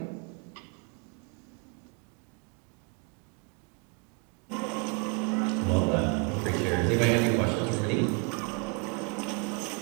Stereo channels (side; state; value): left; quieter; 34.0 dB